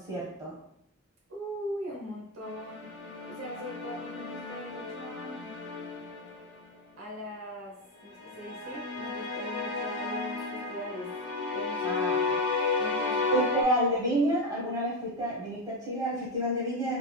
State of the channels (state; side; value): normal; both; correlation 0.09